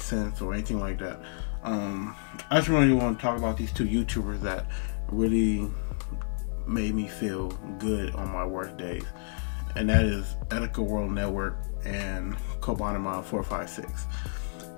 sense, or anything like that. I just really want to talk about these two YouTubers that really made me feel good on my worst days, and that is Ethical World Network and Kobanamon 456.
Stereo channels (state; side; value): silent; right; digital silence